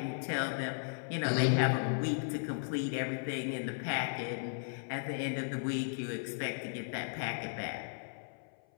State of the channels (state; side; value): silent; right; 54 dB below the other